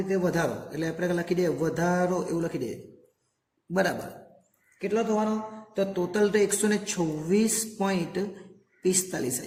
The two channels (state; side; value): identical; both; correlation 1.00